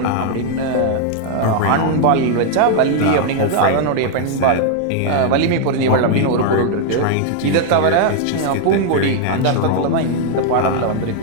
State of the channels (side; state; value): both; different; correlation 0.00